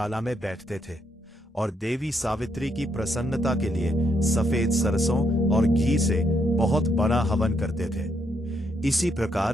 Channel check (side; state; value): both; normal; correlation 0.76